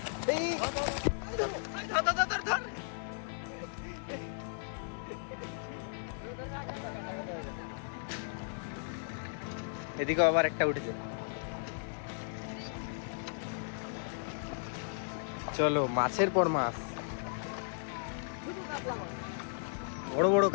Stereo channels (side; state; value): right; silent; 54 dB below the other